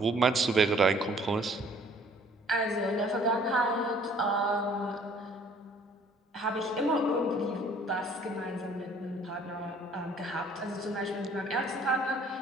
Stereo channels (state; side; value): normal; both; correlation 0.57